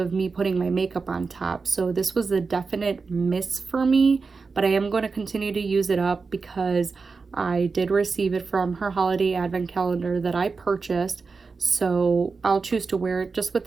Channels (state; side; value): quieter; left; 4.6 dB